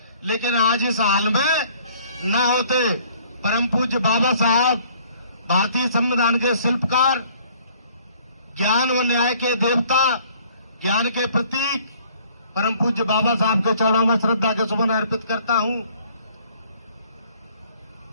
लेकिन आज इस हाल में न होते। परम पूज्य बाबा साहब, भारतीय संविधान के शिल्पकार, ज्ञान व न्याय के देवता, ज्ञान के प्रतीक, परम पूज्य बाबा साहब के चरणों में श्रद्धा के सुमन अर्पित करता हूं।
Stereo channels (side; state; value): both; inverted; correlation -0.58